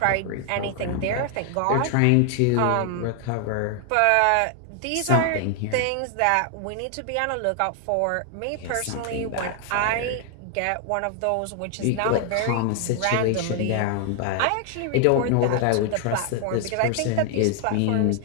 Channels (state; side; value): different; both; correlation 0.00